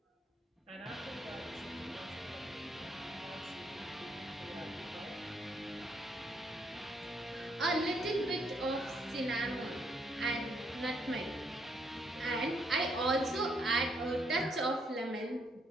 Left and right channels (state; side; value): normal; both; correlation 0.73